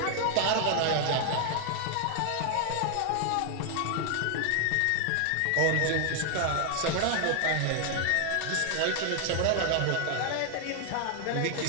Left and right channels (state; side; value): different; both; correlation 0.00